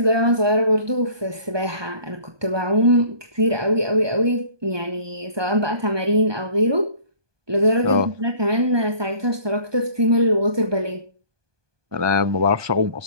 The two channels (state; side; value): late; left; 1.2 ms